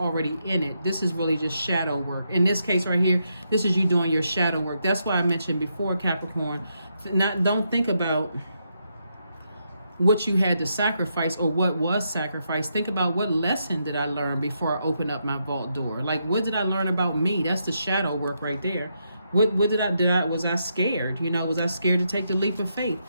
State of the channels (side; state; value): both; inverted; correlation -0.80